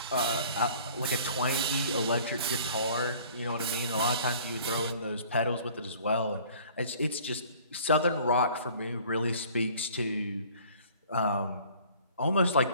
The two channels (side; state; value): both; inverted; correlation -0.51